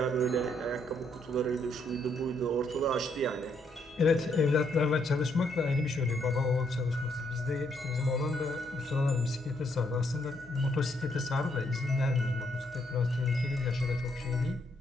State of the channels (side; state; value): both; normal; correlation 0.73